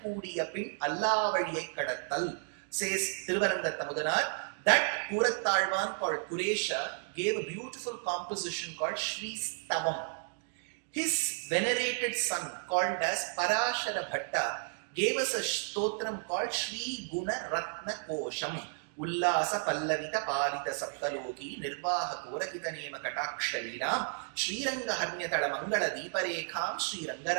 Kudiyapin Allah Vadiyai Kadattal, says Thiruvaranga Tamudanar. That Kurattalman called Kuresha gave a beautiful composition called Shri Stavam. His venerated son called as Parashara Bhatta gave us a stotram called Shri Guna Ratna Kosham. Ullasa Pallavita Palita Saptaloki Nirvaha Korakita Nema Katakshalinam Shri Ranga Harnyatala Mangala Deeparekham Shri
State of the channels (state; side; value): silent; left; digital silence